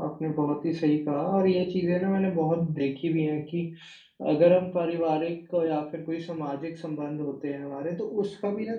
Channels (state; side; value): identical; both; correlation 1.00